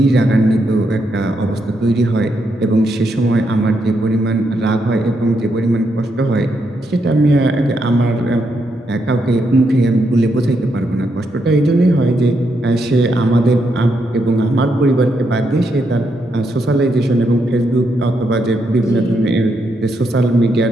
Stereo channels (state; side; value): normal; both; correlation 0.80